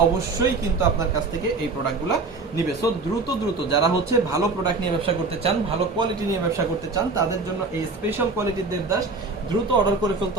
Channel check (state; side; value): quieter; left; 3.8 dB